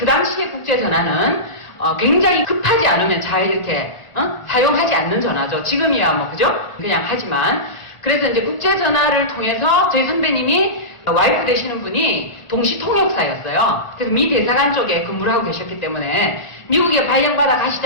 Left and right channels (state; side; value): late; right; 1.4 ms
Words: 당시의 국제전화는 굉장히 급하지 않으면 잘 이렇게, 사용하지 않는 전화죠. 지금이야 뭐, 그죠? 그냥 하지만. 그래서 이제 국제전화를 통해서 저희 선배님이 와이프 되시는 분이 동시통역사였어요. 그래서 미 대사관 쪽에 근무를 하고 계셨기 때문에 미국에 발령받아